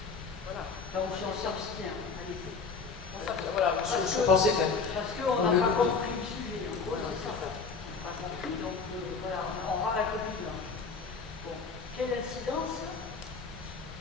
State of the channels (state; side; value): quieter; right; 4.9 dB